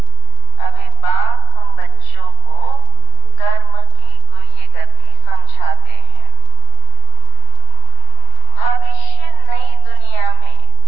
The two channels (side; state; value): right; late; 37 ms